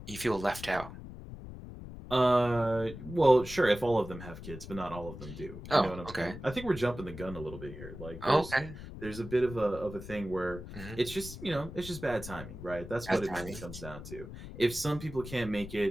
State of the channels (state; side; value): noise; left; rumble, 12 dB below the sound